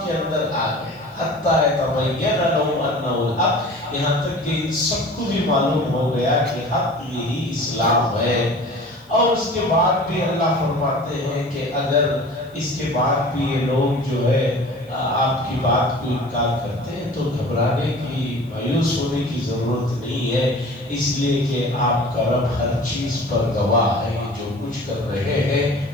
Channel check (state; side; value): noise; right; hiss, 30 dB below the sound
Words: کے اندر آ گئے۔ حتیٰ یتبین لہم انہ الحق، یہاں تک کہ ان سب کو بھی معلوم ہو گیا کہ حق یہی اسلام ہے۔ اور اس کے بعد بھی اللہ فرماتے ہیں کہ اگر اس کے بعد بھی یہ لوگ جو ہے آپ کی بات کو انکار کرتے ہیں تو گھبرانے کی، مایوس ہونے کی ضرورت نہیں ہے، اس لیے کہ آپ کا رب ہر چیز پر گواہ ہے، جو کچھ کر رہے